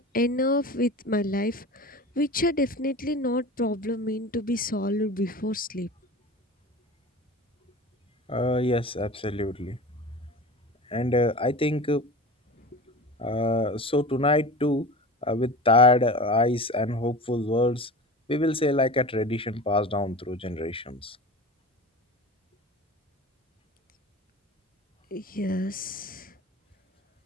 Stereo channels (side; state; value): both; normal; correlation 0.34